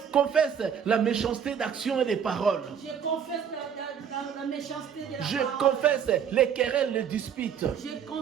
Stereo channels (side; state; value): left; quieter; 7.9 dB